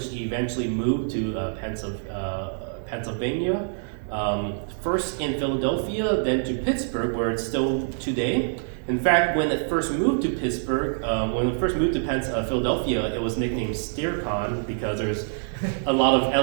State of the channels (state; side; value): silent; left; digital silence